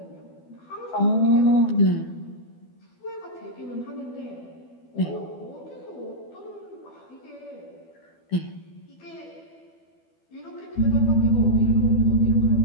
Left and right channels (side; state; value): right; late; 12 ms